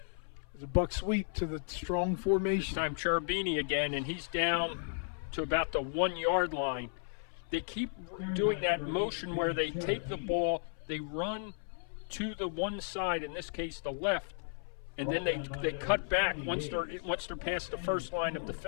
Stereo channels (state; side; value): silent; right; 55 dB below the other